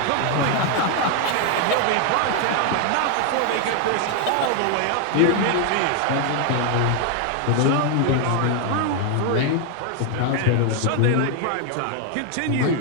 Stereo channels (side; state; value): both; different; correlation 0.00